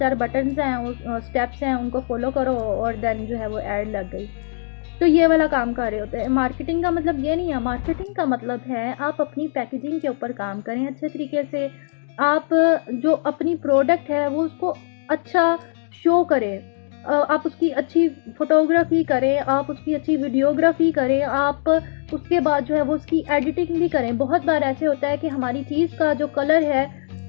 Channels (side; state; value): right; silent; digital silence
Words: बटन्स हैं, उस स्टेप्स हैं, उनको फॉलो करो और देन जो है वो ऐड लग गई। तो ये वाला काम कर रहे होते हैं। मार्केटिंग का मतलब ये नहीं है। मार्केटिंग का मतलब है आप अपनी पैकेजिंग के ऊपर काम करें अच्छे तरीके से। आप जो अपनी प्रोडक्ट है वो उसको अच्छा शो करें, आप उसकी अच्छी फ़ोटोग्राफ़ी करें, आप उसकी अच्छी वीडियोग्राफ़ी करें, आप उसके बाद जो है वो उसकी एडिटिंग भी करें। बहुत बार ऐसे होता है कि हमारी चीज़ का जो कलर है